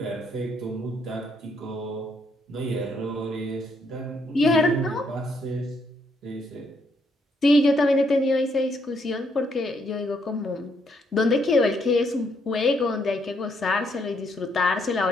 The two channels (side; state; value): both; normal; correlation 0.73